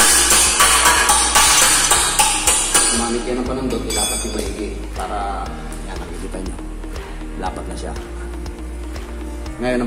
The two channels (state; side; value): identical; both; correlation 1.00